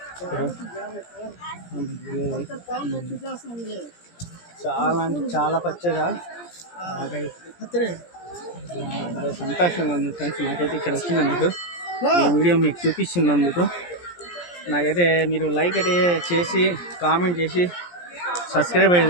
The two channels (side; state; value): right; late; 17 ms